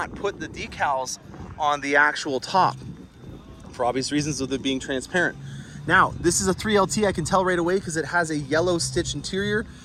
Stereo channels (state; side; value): identical; both; correlation 1.00